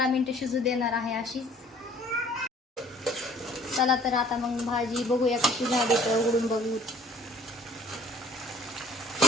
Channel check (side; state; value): both; normal; correlation 0.54